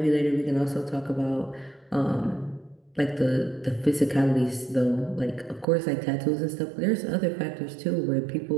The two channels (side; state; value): left; drops out; at 5.7 s